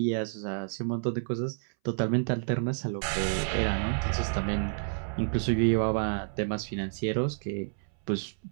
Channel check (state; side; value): silent; left; 58 dB below the other